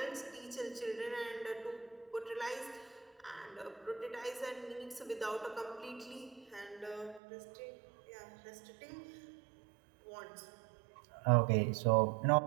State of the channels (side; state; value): left; drops out; at 7.2 s